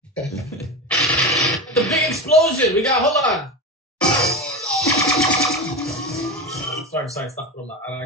the big explosion. We got, hold on. Sorry, stop. Hold on.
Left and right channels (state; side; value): normal; both; correlation 0.22